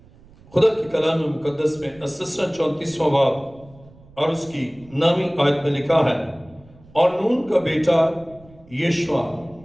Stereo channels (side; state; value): right; noise; rumble, 25 dB below the sound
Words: خدا کی کلام مقدس میں استثنا 34واں باب اور اس کی 9ویں آیت میں لکھا ہے، اور نون کا بیٹا یشوع